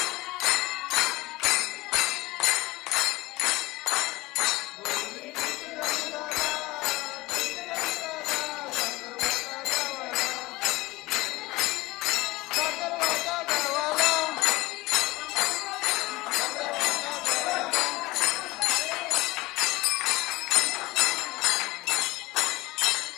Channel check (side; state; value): right; quieter; 20.3 dB